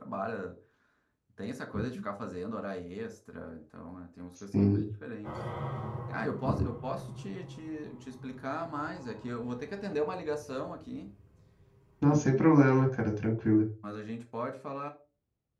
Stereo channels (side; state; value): both; identical; correlation 1.00